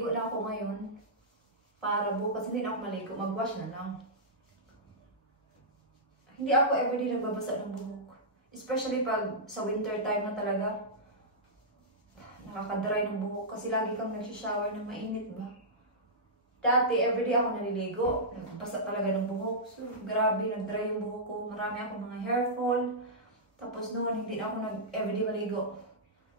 na ako ngayon. Para bukas, hindi na ako maligo. Mag-wash na lang. Hindi ako everyday nagbabasa ng buhok. Especially pag sa winter time na talaga. Nakaka-dry ng buhok. Kasi lagi kang nagsishower ng mainit ba? Dati, everyday ako naliligo. Nagbasa talaga ng buhok. So, grabe, nag-dry yung buhok ko. Marami akong mga hair fall. Tapos noon, hindi na ako everyday maligo.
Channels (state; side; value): normal; both; correlation -0.14